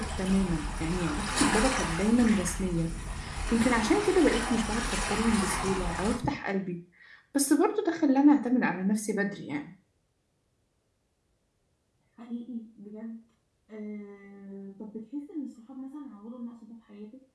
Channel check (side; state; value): both; identical; correlation 1.00